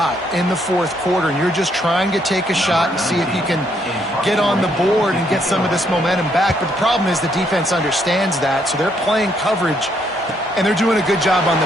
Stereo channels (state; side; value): normal; both; correlation 0.72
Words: in the fourth quarter, and you're just trying to take a shot and see if you can get on the board and get some of this momentum back. But the problem is the defense understands that, so they're playing coverage, and they're doing a good job on